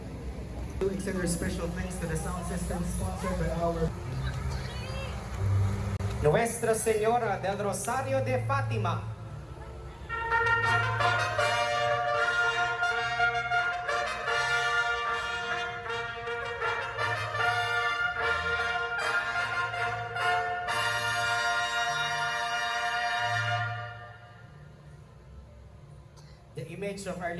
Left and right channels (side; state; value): both; identical; correlation 1.00